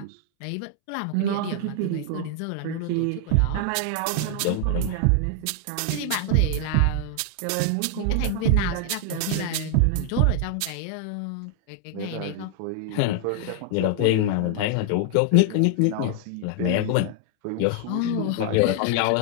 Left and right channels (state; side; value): different; both; correlation 0.00